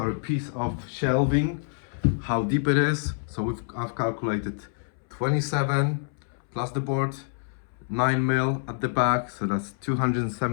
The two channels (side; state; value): right; silent; 60 dB below the other